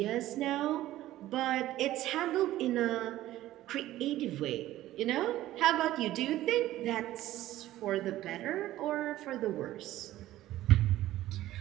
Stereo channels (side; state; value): left; quieter; 14.8 dB